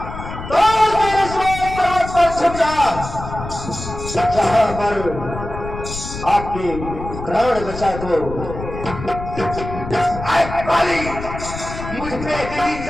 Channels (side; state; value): left; noise; rumble, 9 dB below the sound